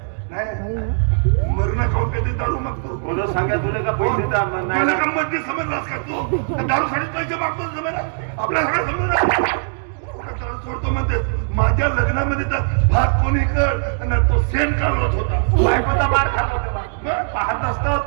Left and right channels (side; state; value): left; silent; digital silence